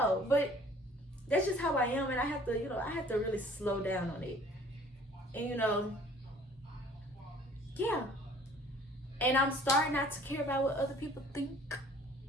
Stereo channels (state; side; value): normal; both; correlation 0.53